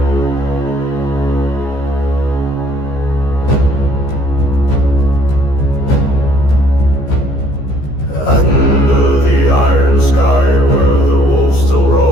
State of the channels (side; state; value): right; late; 15 ms